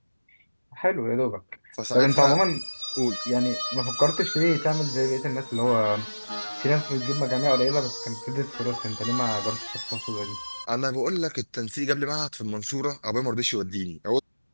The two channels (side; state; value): both; inverted; correlation -1.00